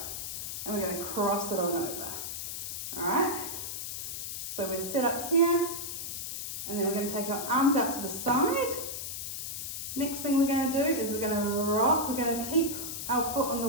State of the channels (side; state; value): left; noise; hiss, 5 dB below the sound